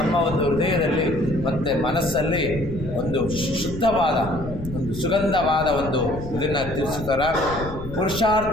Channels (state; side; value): noise; left; rumble, 11 dB below the sound